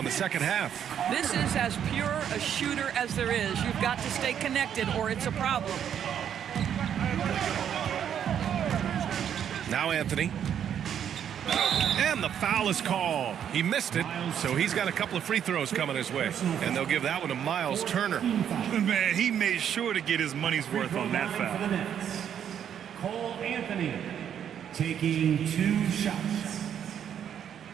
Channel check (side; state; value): left; quieter; 9.1 dB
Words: the second half. This is as pure a shooter as there is. You've got to stay connected or it's a problem. Now Anthony. And the foul is called. He missed it, so he's got a couple of free throws coming his way. And they'll give that one to Miles Turner. Man, he made sure to get his money's worth on that foul. For the Nets, Cole Anthony taking 2 shots.